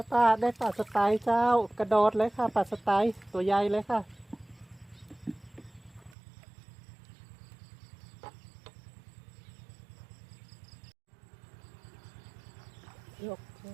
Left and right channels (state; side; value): drops out; left; at 6.2 s